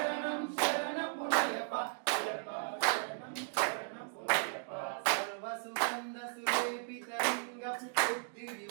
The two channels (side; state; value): left; silent; digital silence